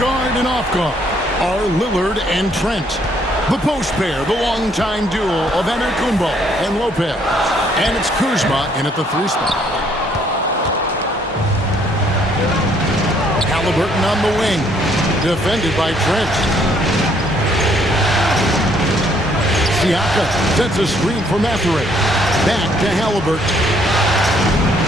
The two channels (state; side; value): normal; both; correlation 0.66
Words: and off guard are Lillard and Trent. The post pair, the longtime duo of Antetokounmpo and Lopez. And it's Kuzma in at the 3 spot. Halliburton on the wing, defended by Trent. Siakam sets a screen for Mathurin. Back to Halliburton.